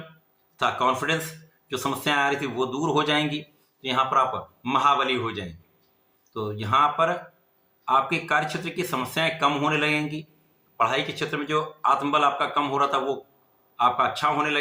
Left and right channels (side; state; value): both; identical; correlation 1.00